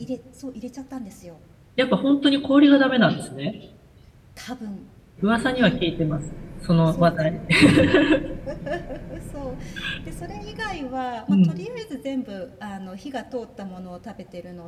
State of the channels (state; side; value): identical; both; correlation 1.00